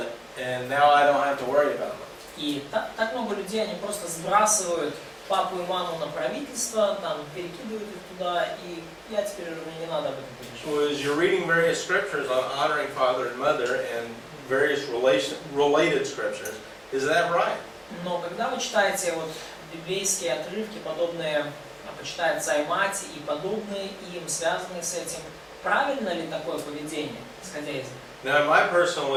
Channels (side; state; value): both; identical; correlation 1.00